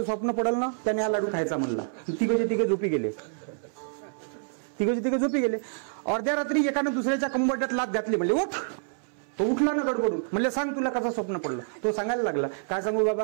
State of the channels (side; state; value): left; silent; 60 dB below the other